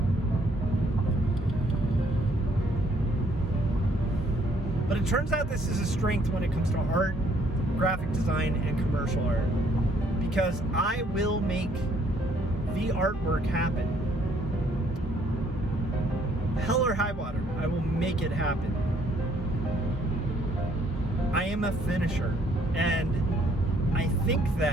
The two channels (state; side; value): normal; both; correlation 0.66